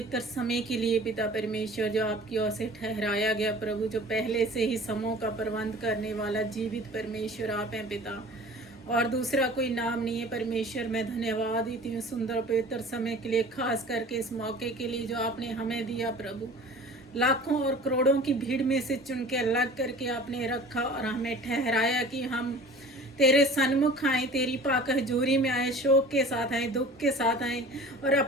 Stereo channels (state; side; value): normal; both; correlation 0.43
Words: समय के लिए पिता परमेश्वर जो आपकी ओर से ठहराया गया प्रभु, जो पहले से ही समों का प्रबंध करने वाला जीवित परमेश्वर आप हैं पिता, और दूसरा कोई नाम नहीं है परमेश्वर। मैं धन्यवाद देती हूँ सुंदर पवित्र समय के लिए, खास करके इस मौके के लिए जो आपने हमें दिया प्रभु। लाखों और करोड़ों की भीड़ में से चुन के अलग करके आपने रखा और हमें ठहराया कि हम तेरे सन्मुख आए, तेरी पाक हजूरी में आए, शोक के साथ आए, दुख के साथ आए, और